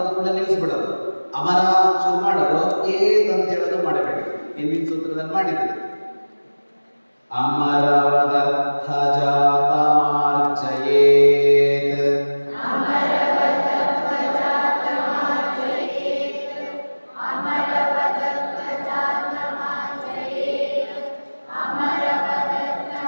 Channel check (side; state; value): both; inverted; correlation -1.00